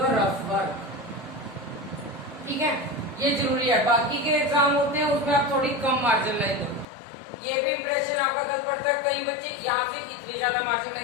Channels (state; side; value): drops out; right; at 6.9 s